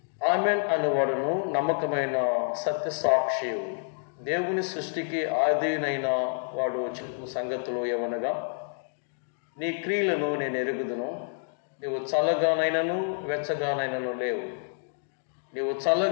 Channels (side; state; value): right; silent; digital silence